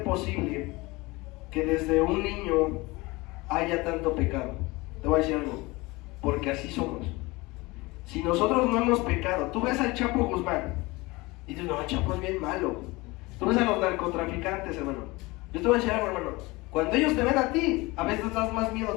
posible que desde un niño haya tanto pecado? Te voy a decir algo, porque así somos. Si nosotros no hemos pecado, tú ves al Chapo Guzmán y dices, no, el Chapo es bien malo. Tú ves a los narcotraficantes, hermano. Yo te voy a decir algo, hermano, cuando ellos te ven a ti, a veces das más miedo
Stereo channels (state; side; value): quieter; right; 22.9 dB